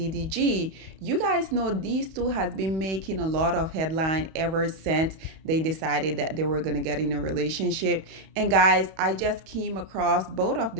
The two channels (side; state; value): left; late; 31 ms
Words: You guys know these two has been making a lot of headline ever since they decided that they were going to get in a relationship. And guys, I just came across both of